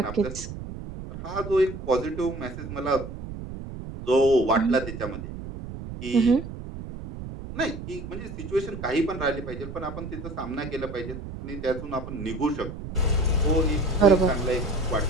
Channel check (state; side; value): noise; right; rumble, 10 dB below the sound